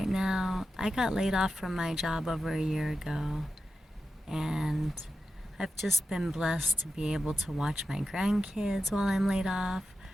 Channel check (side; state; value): both; normal; correlation 0.91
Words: now. I got laid off from my job over a year ago, and I've just been blessed to be able to watch my grandkids while I'm laid off,